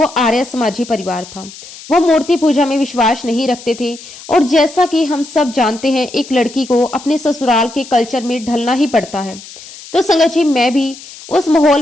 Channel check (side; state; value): left; noise; hiss, 17 dB below the sound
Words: आर्य समाजी परिवार था। वो मूर्ति पूजा में विश्वास नहीं रखते थे, और जैसा कि हम सब जानते हैं, एक लड़की को अपने ससुराल के कल्चर में ढलना ही पड़ता है। तो संगत जी, मैं भी उस माहौल